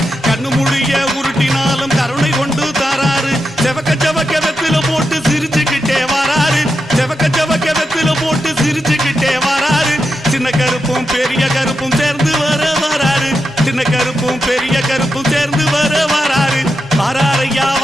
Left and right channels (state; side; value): normal; both; correlation 0.87